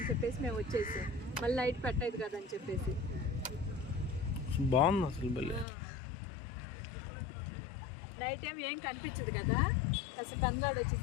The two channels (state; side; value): drops out; right; at 5.7 s